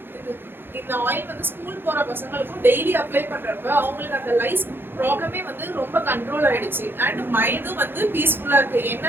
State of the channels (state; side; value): late; left; 0.10 ms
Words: இந்த ஆயில் வந்து ஸ்கூல் போற பசங்களுக்கும் டெய்லி அப்ளை பண்றப்ப அவங்களுக்கு அந்த லைஸ் ப்ராப்ளமே வந்து ரொம்ப கண்ட்ரோல் ஆயிடுச்சு. அண்ட் மைண்டும் வந்து பீஸ்ஃபுல்லா இருக்கு.